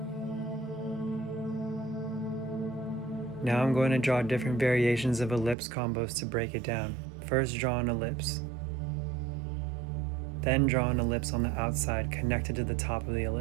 Now I'm going to draw different variations of ellipse combos to break it down. First, draw an ellipse. Then draw an ellipse on the outside connected to the top of the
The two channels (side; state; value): left; drops out; at 5.6 s